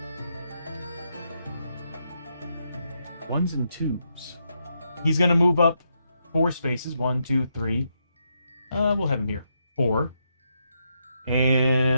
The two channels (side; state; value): both; inverted; correlation -0.81